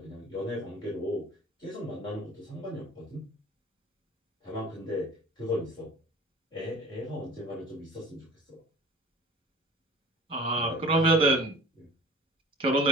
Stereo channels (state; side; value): normal; both; correlation 0.44